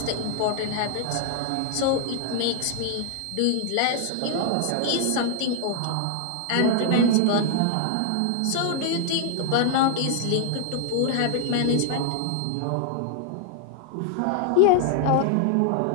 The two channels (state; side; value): different; both; correlation 0.00